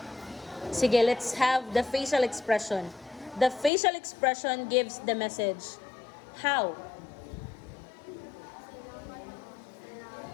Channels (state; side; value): drops out; right; at 3.7 s